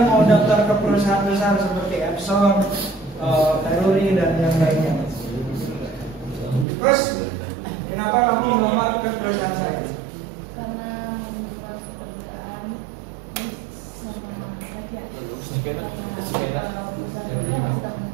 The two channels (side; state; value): left; drops out; at 6.7 s